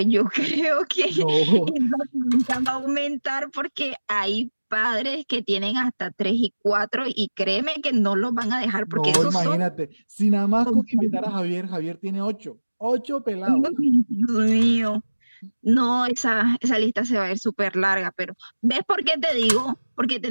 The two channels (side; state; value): both; inverted; correlation -1.00